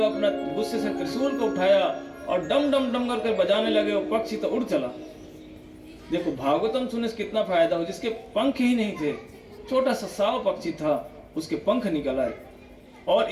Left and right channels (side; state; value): both; identical; correlation 1.00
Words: अपना गुस्से से त्रिशूल को उठाया और डम डम डम करके बजाने लगे, वो पक्षी तो उड़ चला। देखो भागवतम सुनने से कितना फायदा हो, जिसके पंख ही नहीं थे, छोटा सा साव पक्षी था, उसके पंख निकल आए और